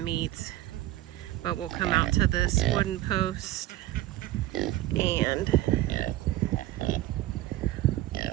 But we'll come out to this wooden post and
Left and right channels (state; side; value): quieter; left; 15.4 dB